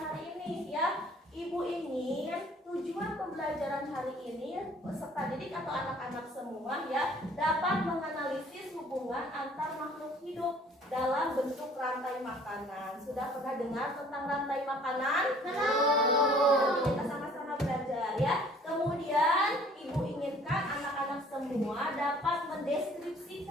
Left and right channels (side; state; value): both; normal; correlation 0.54